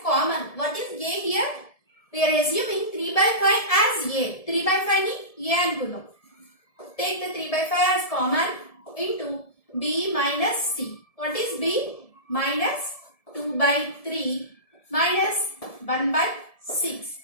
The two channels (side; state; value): right; late; 1.7 ms